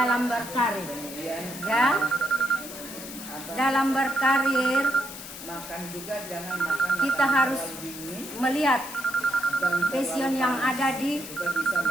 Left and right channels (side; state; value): left; noise; hiss, 12 dB below the sound